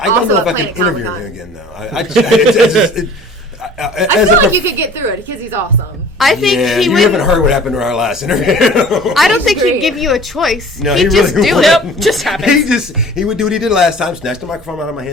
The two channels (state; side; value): normal; both; correlation 0.47